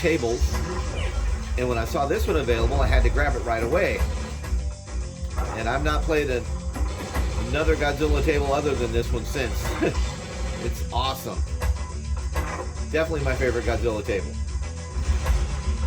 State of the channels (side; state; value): both; identical; correlation 1.00